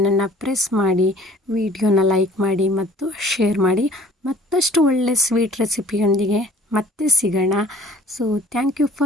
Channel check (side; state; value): both; normal; correlation 0.52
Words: ಪ್ರೆಸ್ ಮಾಡಿ, ವಿಡಿಯೋನ ಲೈಕ್ ಮಾಡಿ ಮತ್ತು ಶೇರ್ ಮಾಡಿ. ಮತ್ತಷ್ಟು ಒಳ್ಳೆ ಸ್ವೀಟ್ ರೆಸಿಪಿಯೊಂದಿಗೆ ಮತ್ತೆ ಸಿಗೋಣ. So thank you